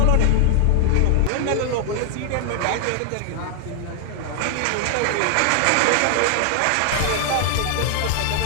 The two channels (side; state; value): both; different; correlation 0.00